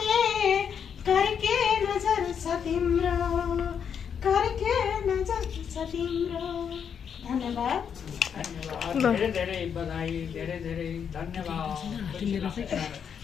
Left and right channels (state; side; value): quieter; right; 7.5 dB